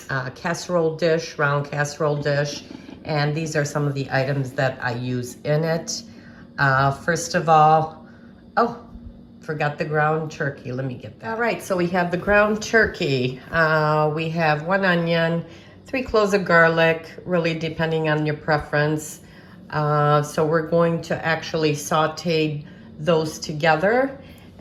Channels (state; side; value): identical; both; correlation 1.00